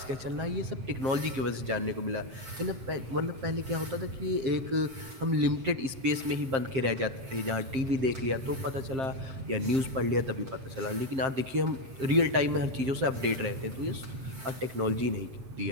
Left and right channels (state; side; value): late; left; 7.6 ms